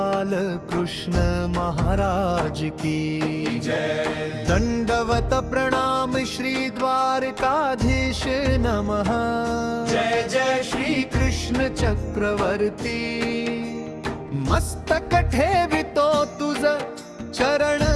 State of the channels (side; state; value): both; identical; correlation 1.00